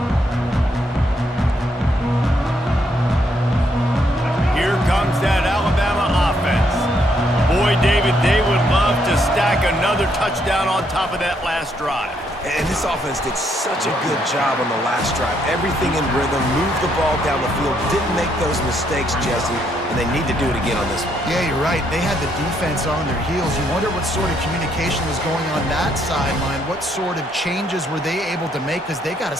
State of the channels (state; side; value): normal; both; correlation 0.73